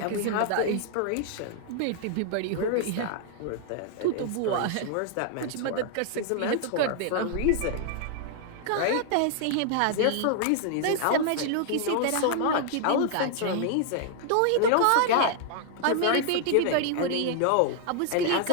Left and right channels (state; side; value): different; both; correlation 0.00